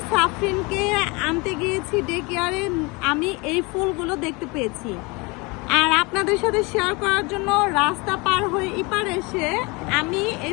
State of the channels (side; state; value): right; quieter; 27.1 dB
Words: সাফরিনকে আনতে গিয়েছি ডে কেয়ারে। আমি এই ফুলগুলো দেখতে পেয়েছি আর আপনাদের সাথে শেয়ার করার জন্য রাস্তা পার হয়ে এপার এসে আমি